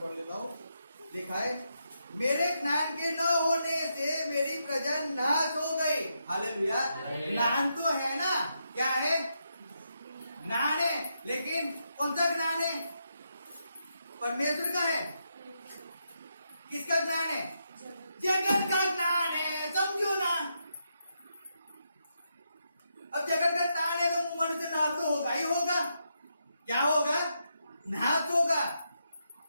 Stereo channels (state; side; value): inverted; both; correlation -0.82